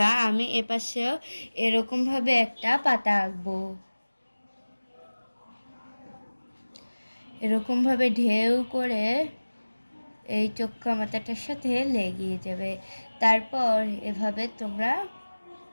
আমি এপাশেও এরকমভাবে একটা পাতা আঁকবো। এরকমভাবে ঢেউ করে এই চোক্কা মাথাটার সাথে লেগে যাবে। তারপর এভাবে তোমরা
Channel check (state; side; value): inverted; both; correlation -1.00